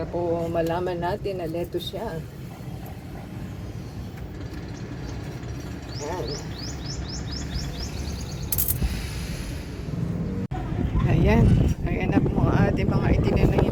po malaman natin na lettuce siya. Ayan na po ang ating mga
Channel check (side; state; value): both; identical; correlation 1.00